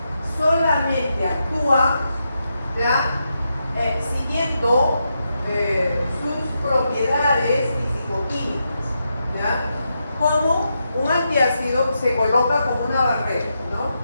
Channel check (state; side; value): inverted; both; correlation -0.85